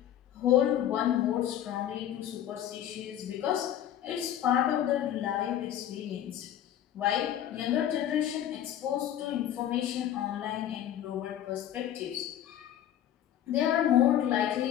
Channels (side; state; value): right; quieter; 11.2 dB